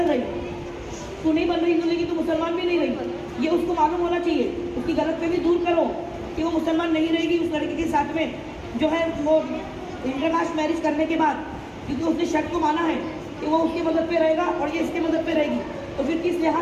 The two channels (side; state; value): both; identical; correlation 1.00